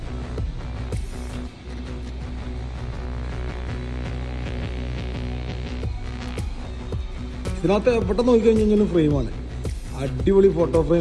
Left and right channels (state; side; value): identical; both; correlation 1.00